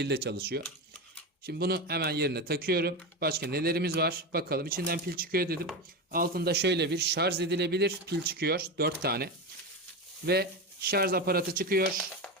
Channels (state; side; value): normal; both; correlation 0.18